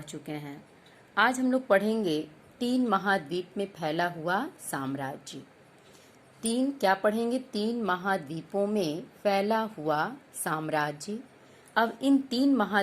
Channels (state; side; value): identical; both; correlation 1.00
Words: चुके हैं। आज हम लोग पढ़ेंगे 3 महाद्वीप में फैला हुआ साम्राज्य। क्या पढ़ेंगे? 3 महाद्वीपों में फैला हुआ साम्राज्य। अब इन 3